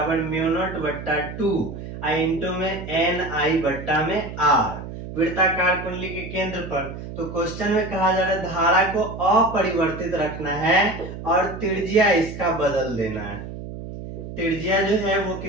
म्यू नॉट बट्टा 2 आई इंटू में एन आई बट्टा में आर, वृत्ताकार कुंडली के केंद्र पर। तो क्वेश्चन में कहा जा रहा है धारा को अपरिवर्तित रखना है और त्रिज्या इसका बदल देना है। त्रिज्या जो है वो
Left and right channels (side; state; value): right; noise; hum, 10 dB below the sound